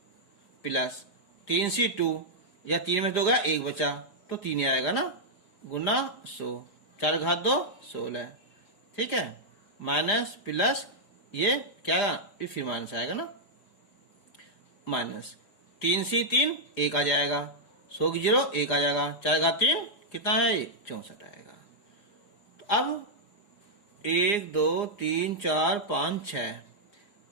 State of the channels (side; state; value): right; late; 4.9 ms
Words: प्लस 3C2 या 3 में 2 गया 1 बचा तो 3 ही आएगा ना, गुना 100, 4 घात 2 16, ठीक है, माइनस प्लस ये क्या आएगा, ये फिर माइनस आएगा ना, माइनस 3C3 1 आ जाएगा, 100 की 0 1 आ जाएगा, 4 घात 3 कितना है, 64 आएगा। तो अब 1 2 3 4 5 6,